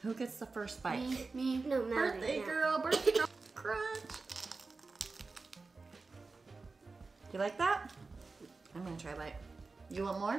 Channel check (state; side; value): quieter; left; 3.9 dB